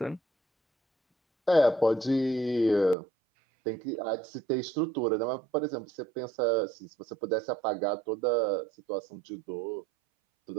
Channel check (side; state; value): left; drops out; at 3.0 s